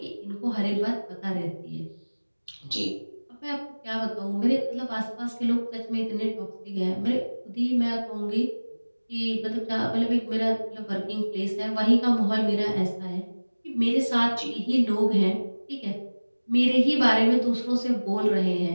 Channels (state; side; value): inverted; both; correlation -1.00